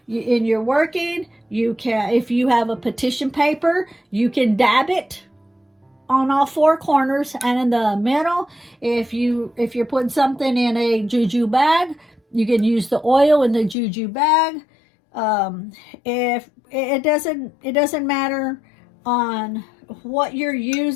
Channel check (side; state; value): right; drops out; at 13.8 s